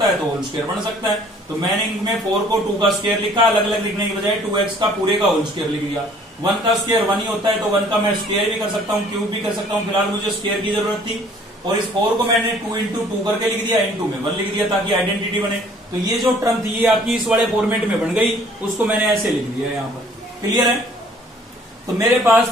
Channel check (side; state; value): both; normal; correlation 0.56